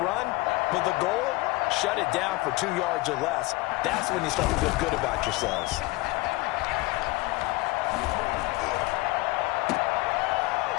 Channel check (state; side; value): quieter; right; 22.0 dB